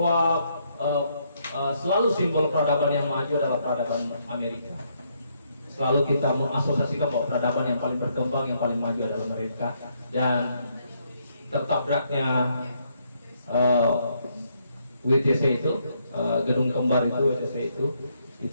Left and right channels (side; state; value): both; inverted; correlation -0.74